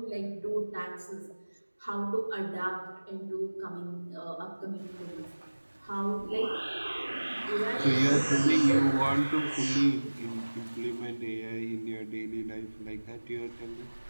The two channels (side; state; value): both; inverted; correlation -1.00